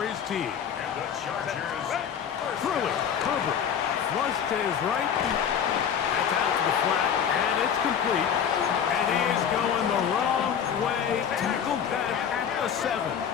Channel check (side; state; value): right; quieter; 8.1 dB